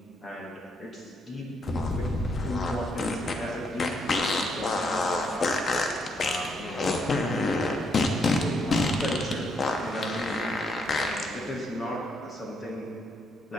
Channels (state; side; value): normal; both; correlation 0.75